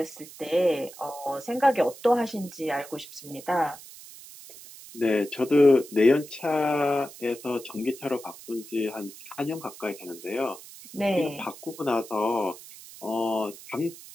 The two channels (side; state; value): right; noise; hiss, 17 dB below the sound